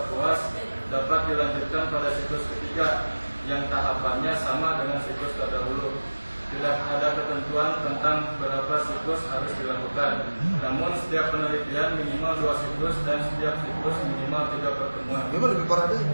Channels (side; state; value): both; inverted; correlation -1.00